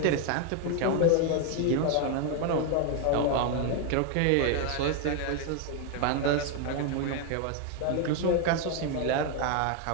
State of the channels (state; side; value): different; both; correlation 0.01